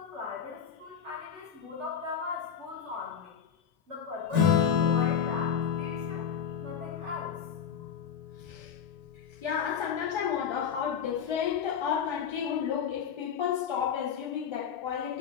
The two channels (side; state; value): right; quieter; 7.8 dB